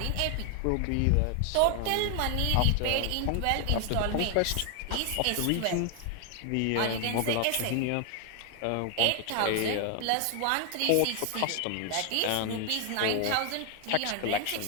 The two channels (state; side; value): different; both; correlation 0.00